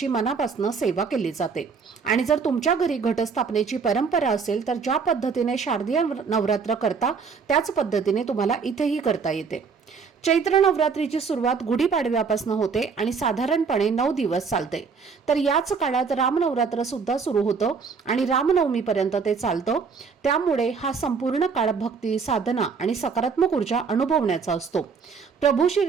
मनापासून सेवा केली जाते. आणि जर तुमच्या घरी घटस्थापनेची परंपरा असेल तर ज्या पद्धतीने शारदीय नवरात्र करता त्याच पद्धतीने तुम्हाला इथेही करता येते. चैत्र नवरात्रीची सुरुवात गुढीपाडव्यापासून होते आणि साधारणपणे 9 दिवस चालते. तर याच काळात रामनवरात्र सुद्धा सुरू होतं आणि रामनवमीपर्यंत ते चालतं. त्यामुळे हा संपूर्ण काळ भक्ती, साधना आणि सकारात्मक ऊर्जा अनुभवण्याचा असतो. प्रभू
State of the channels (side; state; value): left; quieter; 5.5 dB